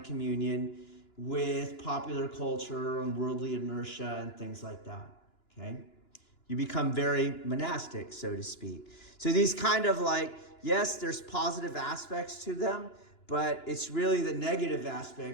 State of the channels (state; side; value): late; right; 2.9 ms